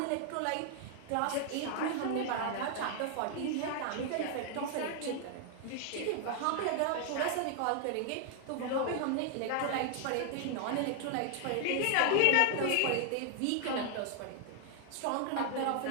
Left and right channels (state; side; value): different; both; correlation 0.00